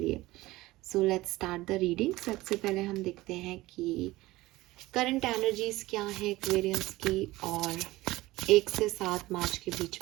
So let's start the reading. सबसे पहले हम देखते हैं कि करंट एनर्जीज क्या है एक्वेरियंस की, और 1 से 7 मार्च के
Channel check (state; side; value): quieter; left; 18.5 dB